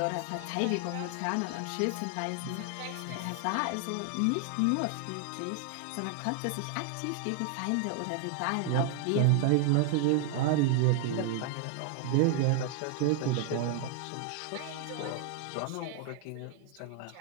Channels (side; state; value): both; different; correlation 0.00